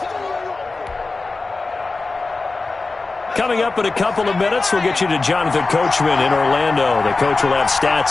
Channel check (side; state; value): right; quieter; 3.6 dB